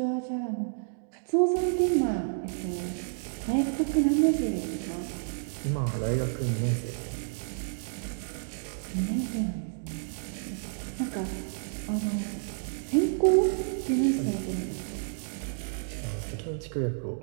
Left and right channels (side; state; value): left; silent; digital silence